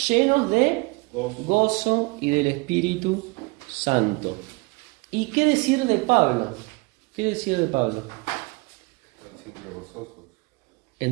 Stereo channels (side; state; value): left; quieter; 26.6 dB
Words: de gozo y del Espíritu Santo. ¿Y qué decir de Pablo? ¿Qué decir de Pablo? Están siempre gozosos.